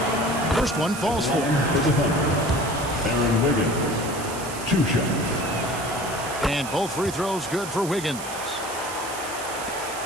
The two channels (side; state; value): right; noise; hiss, 11 dB below the sound